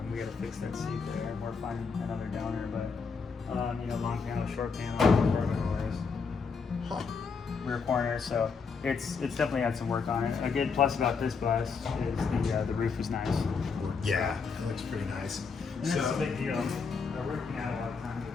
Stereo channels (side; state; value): right; quieter; 5.2 dB